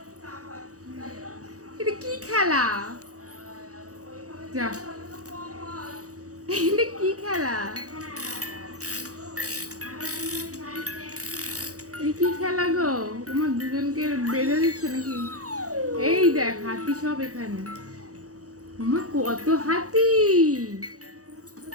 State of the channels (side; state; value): left; late; 0.66 ms